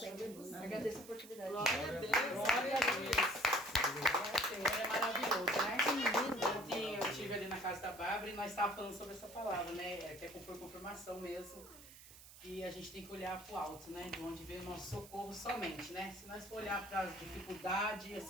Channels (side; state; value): right; noise; hiss, 18 dB below the sound